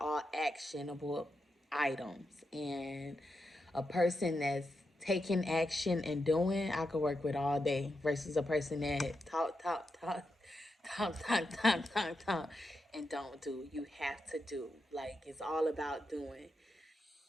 actionable items. And a person that's taking action and doing, I could work with all day versus a person that talk, and don't do. You have to do. Like, it's all about doing.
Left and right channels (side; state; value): both; normal; correlation 0.86